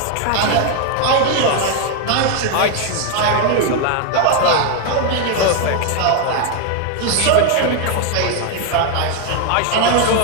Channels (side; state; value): both; different; correlation 0.01